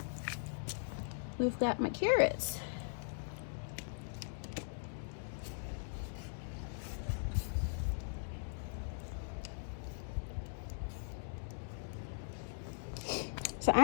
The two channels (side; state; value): right; silent; digital silence